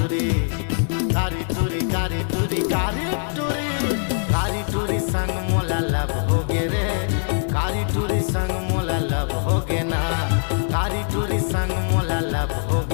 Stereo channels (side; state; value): right; silent; 64 dB below the other